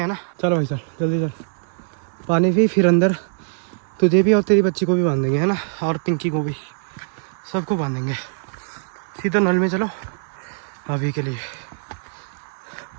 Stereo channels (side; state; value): left; silent; 64 dB below the other